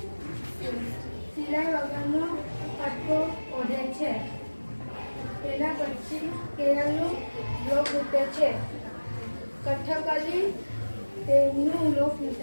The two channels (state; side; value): inverted; both; correlation -1.00